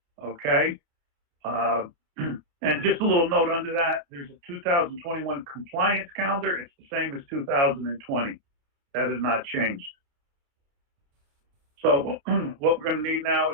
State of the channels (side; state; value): left; late; 29 ms